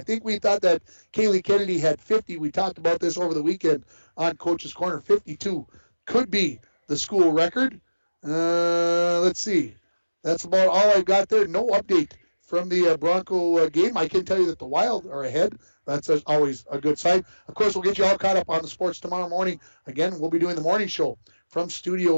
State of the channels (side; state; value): both; inverted; correlation -1.00